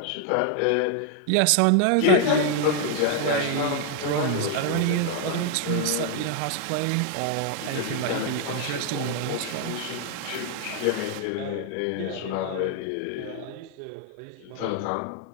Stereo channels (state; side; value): different; both; correlation 0.00